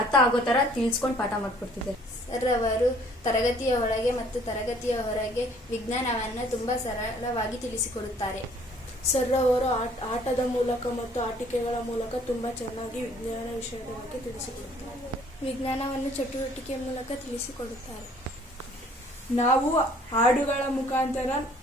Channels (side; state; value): both; normal; correlation 0.58